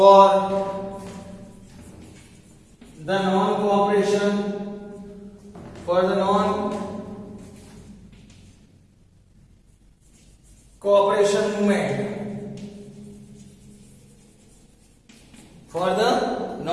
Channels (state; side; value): identical; both; correlation 1.00